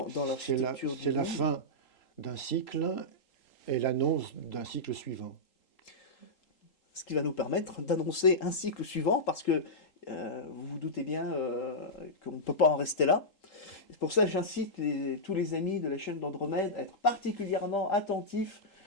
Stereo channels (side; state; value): right; late; 3.8 ms